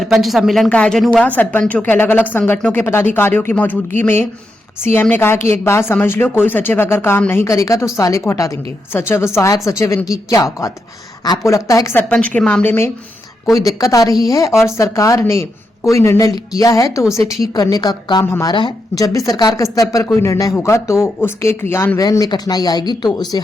सम्मेलन का आयोजन हुआ। सरपंचों के अलग अलग संगठनों के पदाधिकारियों की मौजूदगी में सीएम ने कहा कि एक बात समझ लो, कोई सचिव अगर काम नहीं करेगा तो साले को हटा देंगे। सचिव, सहायक सचिव, इनकी क्या औकात। आपको लगता है कि सरपंच के मामले में कोई दिक्कत आ रही है और सरकार ने कोई निर्णय किया है तो उसे ठीक करने का काम हमारा है। जब भी सरकार के स्तर पर कोई निर्णय होगा तो उसके क्रियान्वयन में कठिनाई आएगी तो उसे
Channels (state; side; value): normal; both; correlation 0.84